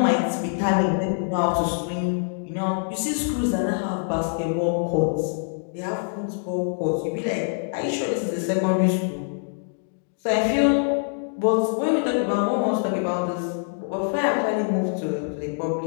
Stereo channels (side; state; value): right; silent; digital silence